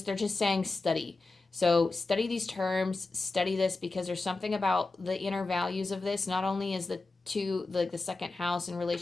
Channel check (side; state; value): right; quieter; 3.5 dB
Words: saying study. So study these terms, study this, because there's something about the inner values of this. Not only is the second house in